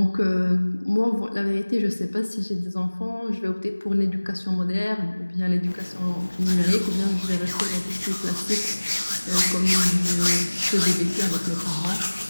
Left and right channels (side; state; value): both; inverted; correlation -1.00